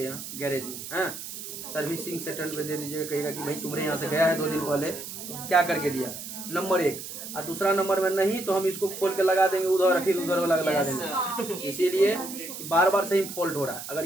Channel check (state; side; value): noise; right; hiss, 10 dB below the sound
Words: यहाँ गैरेज में, हाँ सर्विसिंग सेंटर पे दे दीजिएगा। कहेगा कि भाई तुम्हारे यहाँ से गया है 2 दिन पहले, क्या करके दिया, नंबर 1। और दूसरा नंबर में नहीं तो हम इसको खोल के लगा देंगे उधर, फिर उधर वाला लगा देंगे। इसीलिए बार बार से ही फॉल्ट हो रहा है। अगर